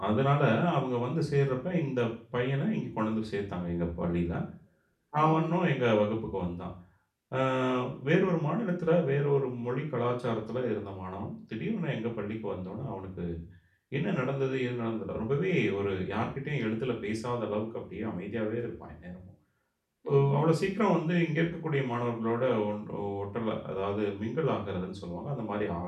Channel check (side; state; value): both; identical; correlation 1.00